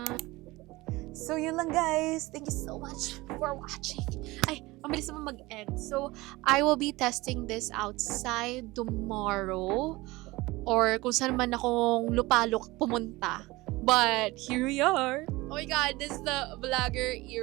So, yun lang, guys. Thank you so much for watching. Ay, ang bilis naman mag-end. So, I will be testing this outside tomorrow. Or kung saan man akong lupalok pumunta. But, here we are. Oh my God, this is the vlogger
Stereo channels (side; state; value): left; quieter; 20.8 dB